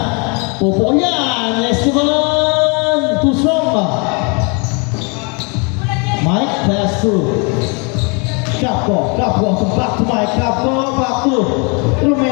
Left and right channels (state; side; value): quieter; right; 33.3 dB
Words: Pupo yan. Esteban too strong. Mike pass through. Capco to back to Mike. Capco back to